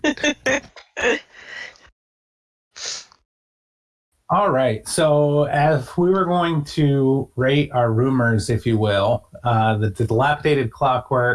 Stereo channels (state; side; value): identical; both; correlation 1.00